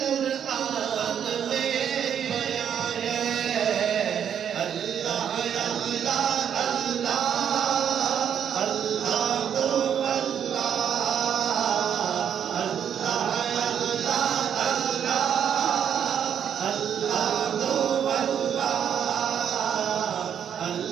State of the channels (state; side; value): quieter; left; 8.6 dB